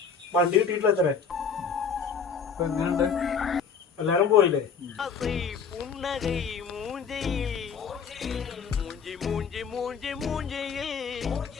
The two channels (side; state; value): right; quieter; 6.1 dB